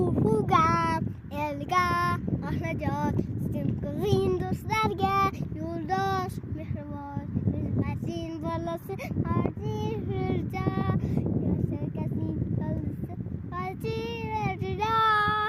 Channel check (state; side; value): identical; both; correlation 1.00